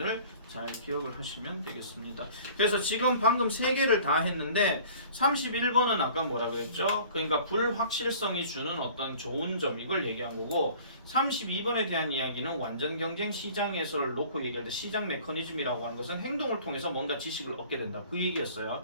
잘 기억을 하시면 되겠습니다. 그래서 지금 방금 3개를 다 했는데 31번은 아까 뭐라 그랬죠? 그러니까 불확실성이 주는 어떤 좋은 점 이걸 얘기한 거고 32번에 대한 이야기는 완전 경쟁 시장 해설을 놓고 얘기할 때 시장 메커니즘이라고 하는 것은 행동을 통해서 뭔가 지식을 얻게 된다. 그 얘기였어요.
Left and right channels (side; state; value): both; inverted; correlation -0.48